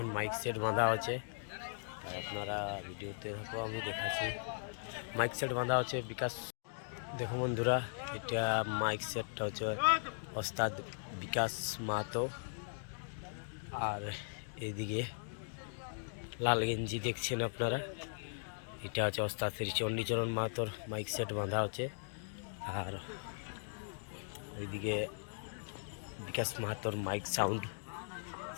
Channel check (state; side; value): silent; right; digital silence